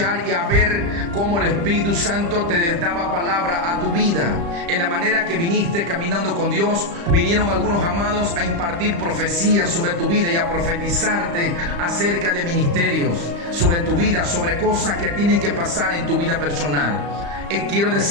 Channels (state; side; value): late; left; 35 ms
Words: y a ver cómo el Espíritu Santo te daba palabra a tu vida. En la manera que viniste caminando con Dios, vinieron algunos amados a impartir profecías sobre tu vida y a profetizarte acerca de ministerios, sobre tu vida, sobre cosas que tienen que pasar en tu vida personal. Quiero